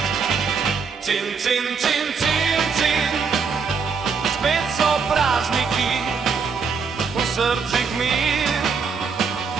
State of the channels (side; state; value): left; quieter; 5.5 dB